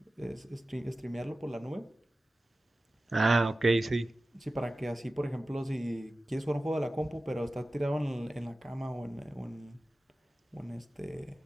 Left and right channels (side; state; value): both; normal; correlation 0.96